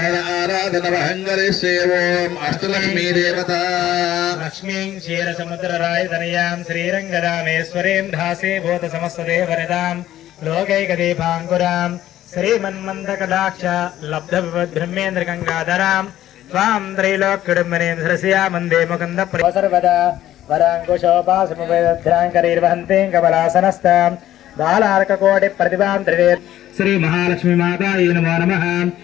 अष्टलक्ष्मी देवता लक्ष्मीं क्षीरसमुद्ररायतनयां श्रीरङ्गरामेश्वरीं धासे भूतसमस्तदेवनितां लोकैकदीपाङ्कुरां श्रीमन्मन्दकटाक्ष लब्धविपद्ब्रह्मेन्द्रगङ्गाधरां त्वां त्रैलोक्यडुम्बनीं धरस्या वन्दे मुकुन्दप्रिय सर्वदा वराङ्कुशोपासमुपैदध्राङ्करीर्वहन्तीं कमलासनस्तां बालार्ककोटि प्रतिभां त्रिवेद श्री महालक्ष्मी माता नमो नमः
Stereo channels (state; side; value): quieter; right; 12.9 dB